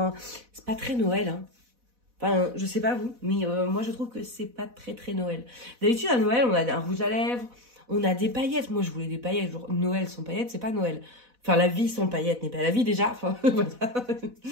c'est pas très Noël, hein. Enfin, je sais pas vous, mais moi je trouve que c'est pas très Noël. D'habitude à Noël, on a un rouge à lèvres, on a des paillettes. Moi je voulais des paillettes, genre Noël sans paillettes, c'est pas Noël. Enfin, la vie sans paillettes n'est pas la vie déjà. Enfin, voilà.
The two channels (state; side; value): late; left; 4.1 ms